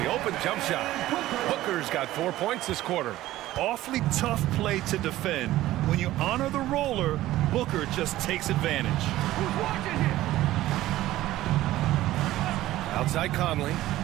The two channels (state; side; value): quieter; left; 15.4 dB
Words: the open jump shot. Booker's got 4 points this quarter. Awfully tough play to defend. When you honor the roller, Booker just takes advantage. Outside Conley.